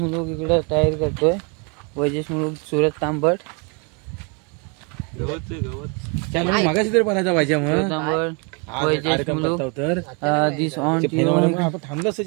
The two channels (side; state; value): left; quieter; 33.1 dB